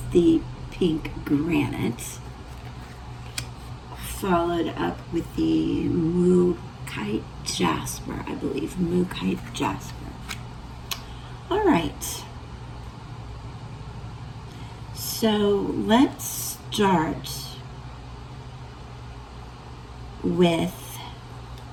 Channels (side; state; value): both; identical; correlation 1.00